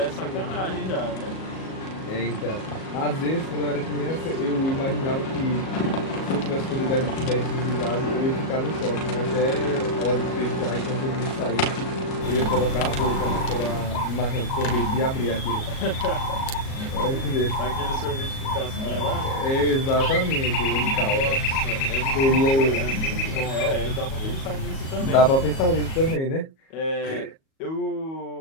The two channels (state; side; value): late; right; 37 ms